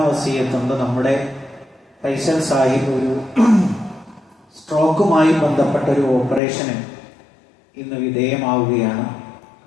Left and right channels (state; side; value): drops out; right; at 6.4 s